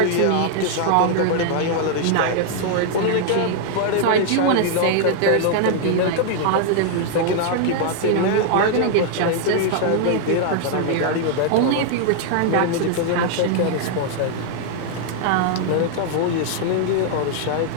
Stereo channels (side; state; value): both; different; correlation 0.00